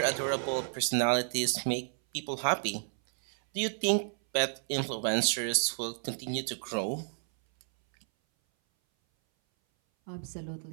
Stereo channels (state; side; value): silent; left; 57 dB below the other